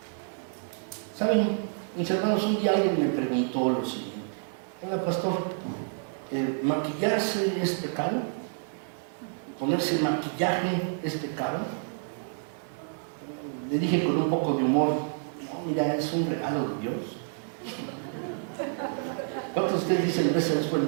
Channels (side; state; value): left; silent; 59 dB below the other